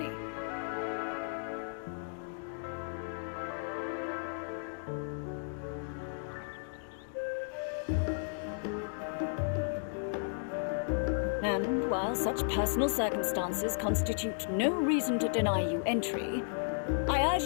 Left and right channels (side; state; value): right; silent; digital silence